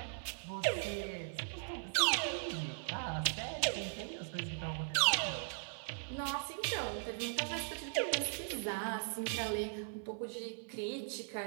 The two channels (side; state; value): left; silent; 52 dB below the other